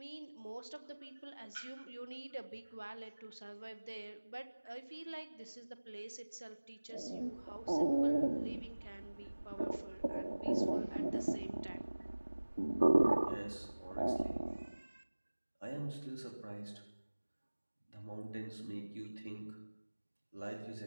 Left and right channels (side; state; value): both; inverted; correlation -1.00